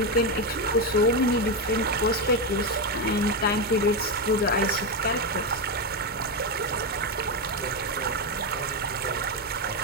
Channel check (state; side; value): normal; both; correlation 0.08